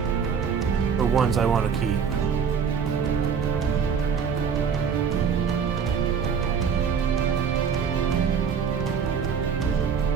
For ones I want to keep.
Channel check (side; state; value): left; quieter; 6.7 dB